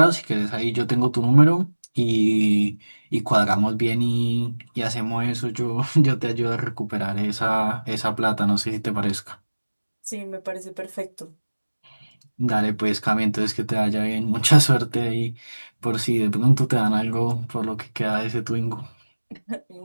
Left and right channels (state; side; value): inverted; both; correlation -1.00